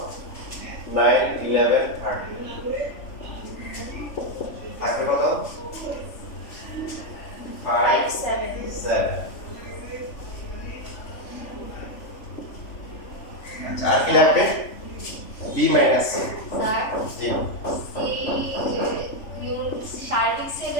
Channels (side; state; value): right; late; 3.4 ms